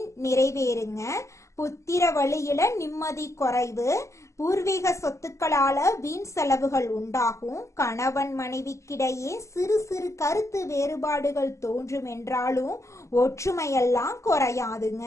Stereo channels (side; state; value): right; late; 0.14 ms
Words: நிறைவேறுங்க. புத்திர வழியில நிம்மதி குறைவு, பூர்வீக சொத்துக்களால வீண் செலவுகள் உண்டாகும். கணவன் மனைவிக்கிடையே சிறு சிறு கருத்து வேறுபாடுகள் தோன்றும் என்றாலும் ஒற்றுமையெல்லாம் குறையாதுங்க.